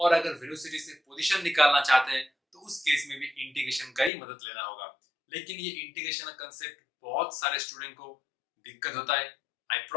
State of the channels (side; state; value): right; drops out; at 4.1 s